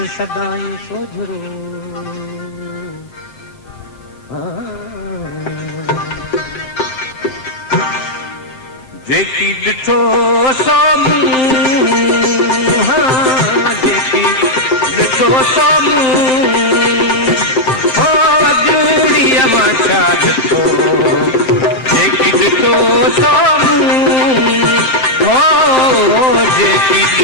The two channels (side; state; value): right; late; 7.7 ms